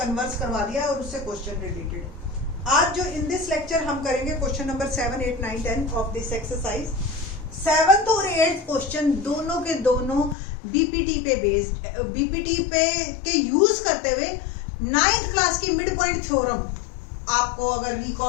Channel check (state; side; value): drops out; right; at 10.4 s